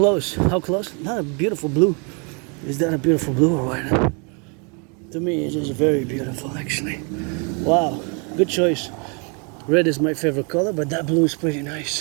not a beautiful blue. Is that a beautiful blue or what? To me, it is very beautiful, actually. Wow, good choice. Red is my favorite color, but that blue is pretty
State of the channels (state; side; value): quieter; left; 35.1 dB